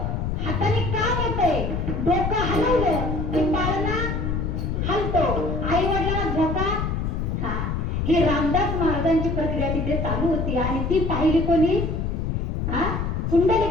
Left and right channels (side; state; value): left; noise; rumble, 1 dB below the sound